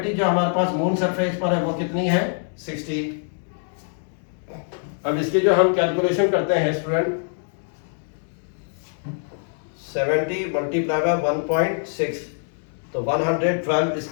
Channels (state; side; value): silent; right; 63 dB below the other